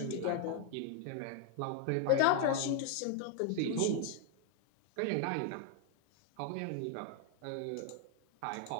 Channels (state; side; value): different; both; correlation 0.00